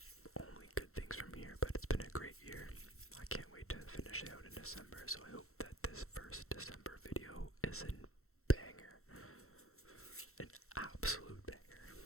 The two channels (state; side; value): late; right; 0.63 ms